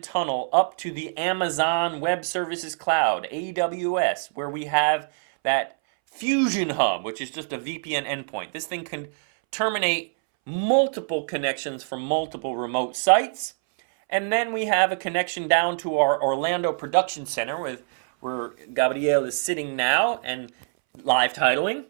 tunnel up to the Amazon Web Services Cloud, AWS, where we have that Fusion Hub, which is just a VPN endpoint. This thing can terminate multiple connections from multiple remote sites. And then we have a connection down to our Orlando production center where Gabriel is sitting now and live titling.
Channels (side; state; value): left; silent; 62 dB below the other